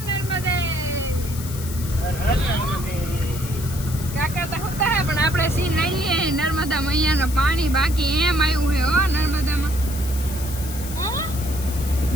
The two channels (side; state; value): left; noise; hiss, 12 dB below the sound